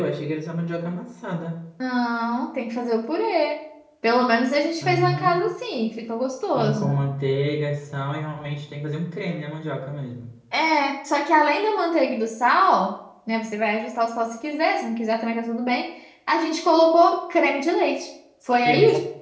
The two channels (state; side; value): identical; both; correlation 1.00